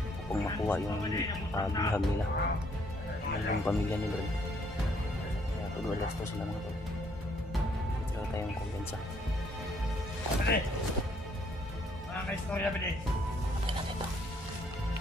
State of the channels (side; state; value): both; normal; correlation 0.67